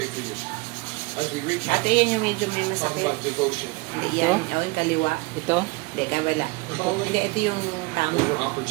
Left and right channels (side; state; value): left; quieter; 25.4 dB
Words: Ate, yun yung medyo may masakit. Hindi yan. Yung kaliwa. Ito? Hindi, kabala. Hindi, ito yung tama.